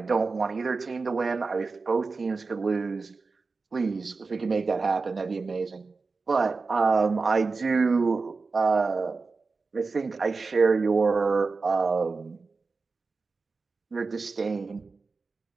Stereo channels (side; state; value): left; quieter; 4.2 dB